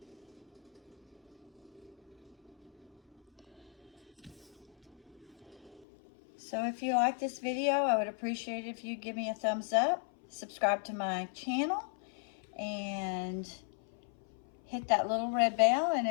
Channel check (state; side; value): drops out; right; at 5.9 s